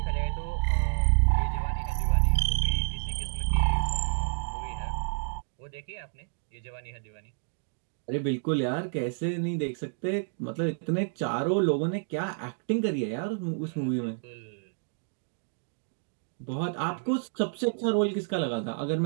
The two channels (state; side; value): silent; left; digital silence